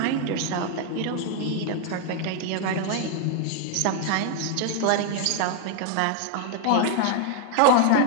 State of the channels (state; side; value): different; both; correlation 0.00